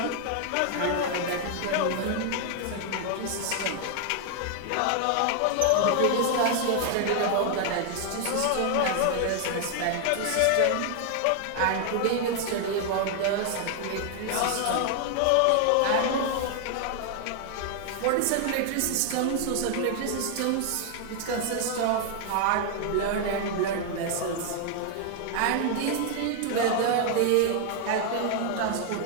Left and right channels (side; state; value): both; different; correlation 0.00